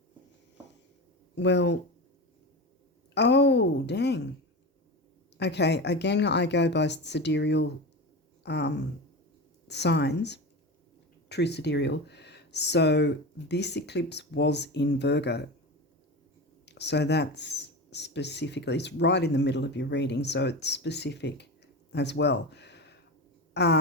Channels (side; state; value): both; normal; correlation 0.25